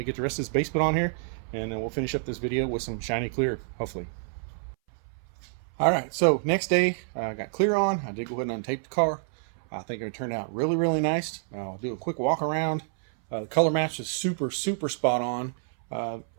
get the rest of this base put on here, and then we'll finish up this video with some shiny clear, hopefully. All right, so next day I got clear on. I did go ahead and untape the car. I think it turned out really, really nice. I'll do a quick walk around. The color match is super, super spot on.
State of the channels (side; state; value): left; silent; 59 dB below the other